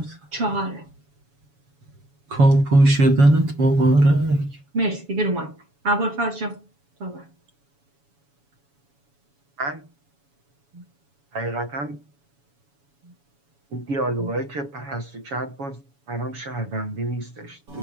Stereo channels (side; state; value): left; late; 7.1 ms